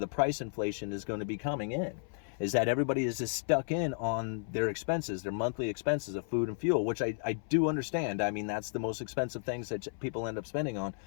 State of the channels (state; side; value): silent; right; 56 dB below the other